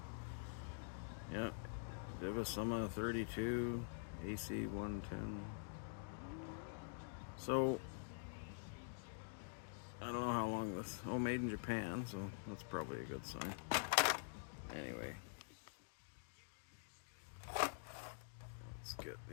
yeah, Divisumma 32, AC 110. So, I don't know how long this. Oh, made in Japan, so that's probably a good sign. Anyway, let's get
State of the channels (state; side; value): silent; right; digital silence